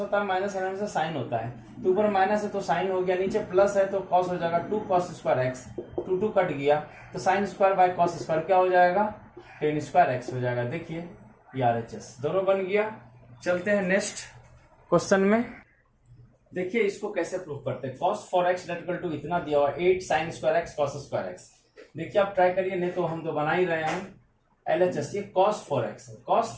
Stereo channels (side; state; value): both; identical; correlation 1.00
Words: है, माइनस रहने से साइन होता है। तो ऊपर माइनस है तो साइन हो गया, नीचे प्लस है तो कॉस हो जाएगा 2 कॉस स्क्वायर एक्स। 2 कट गया तो sine square by cos square क्या हो जाएगा 10 स्क्वायर एक्स हो जाएगा। देखिए ये RHS दोनों बन गया। चलते हैं नेक्स्ट क्वेश्चन में। देखिए इसको कैसे प्रूव करते हैं। cos 4x इक्वल टू इतना दिया हुआ 8 sign square x cos square x. देखिए आप ट्राई करिए, नहीं तो हम तो बना ही रहे हैं। LHS ये cos 4x है। cos